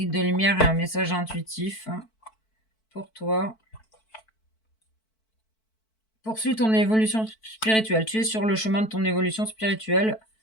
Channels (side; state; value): right; late; 4.5 ms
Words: de lumière et un message intuitif pour toi. Poursuis ton évolution spirituelle. Tu es sur le chemin de ton évolution spirituelle.